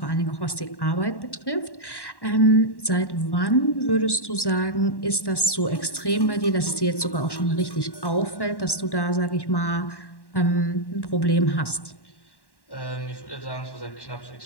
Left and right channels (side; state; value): right; late; 1.1 ms